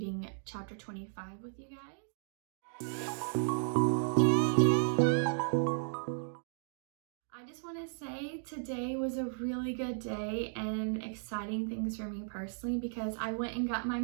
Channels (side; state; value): left; silent; digital silence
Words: chapter 25 with you guys. I just want to say today was a really good day and exciting things for me personally because I went and got my